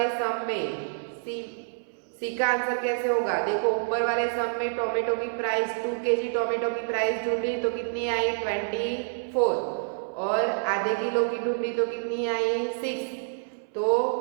सम में सी का आंसर कैसे होगा, देखो ऊपर वाले सम में टोमेटो की प्राइस 2 kg टोमेटो की प्राइस ढूंढी तो कितनी आई 24, और आधे किलो की ढूंढी तो कितनी आई 6। तो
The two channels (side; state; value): left; silent; 60 dB below the other